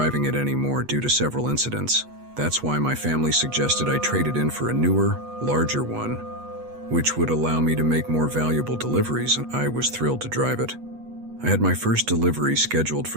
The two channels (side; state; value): left; late; 8.2 ms